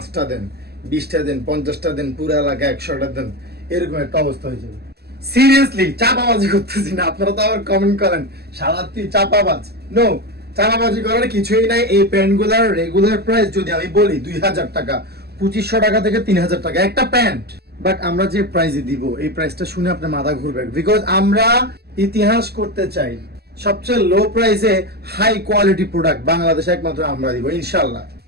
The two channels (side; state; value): left; late; 0.46 ms